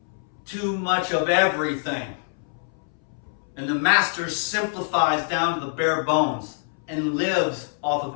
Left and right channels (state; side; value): silent; right; 61 dB below the other